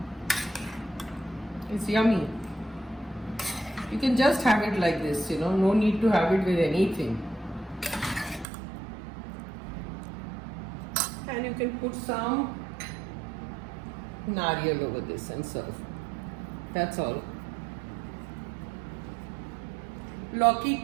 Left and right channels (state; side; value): drops out; left; at 8.5 s